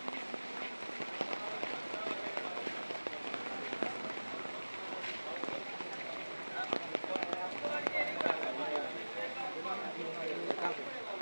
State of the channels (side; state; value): both; inverted; correlation -1.00